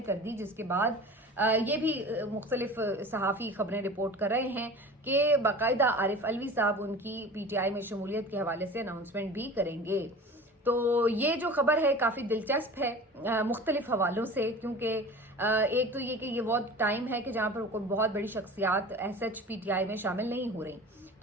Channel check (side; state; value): both; normal; correlation 0.38